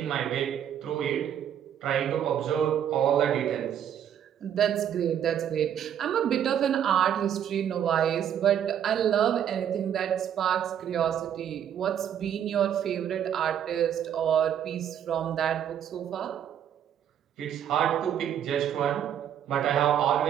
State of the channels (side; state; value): left; quieter; 9.5 dB